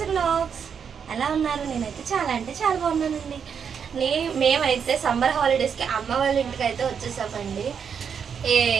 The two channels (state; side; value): quieter; left; 7.0 dB